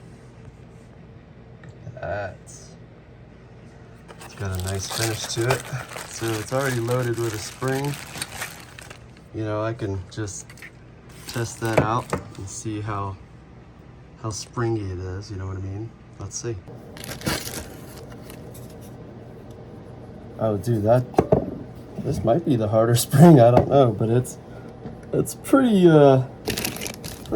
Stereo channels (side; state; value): both; identical; correlation 1.00